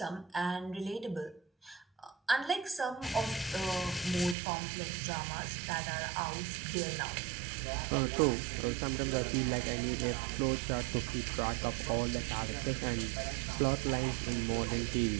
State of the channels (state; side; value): drops out; left; at 4.4 s